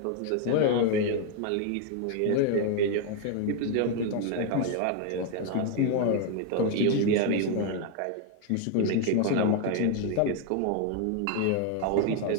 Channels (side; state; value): both; different; correlation 0.01